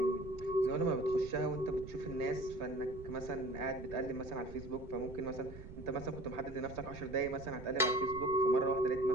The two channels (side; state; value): right; noise; rumble, 14 dB below the sound